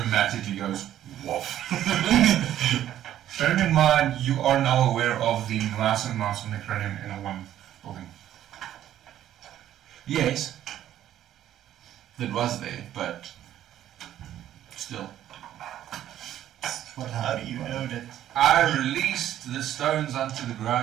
goes woof. Bearing in mind, you are now aware of the massive amounts of necronium in a one building. Yes, it was there, but still. What How do happened? you know that? I released the stones onto the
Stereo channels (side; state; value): left; quieter; 11.8 dB